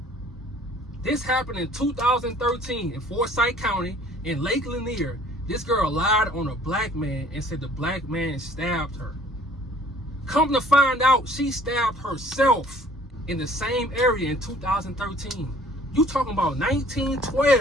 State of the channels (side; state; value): both; normal; correlation 0.55